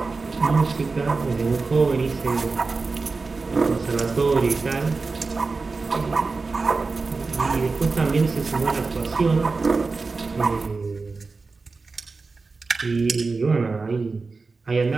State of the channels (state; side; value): quieter; left; 4.1 dB